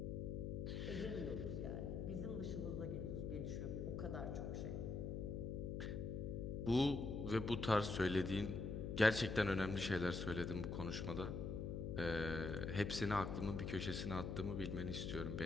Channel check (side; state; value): left; noise; hum, 3 dB below the sound